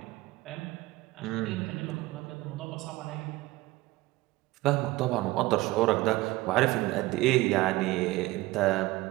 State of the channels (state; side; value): quieter; left; 19.1 dB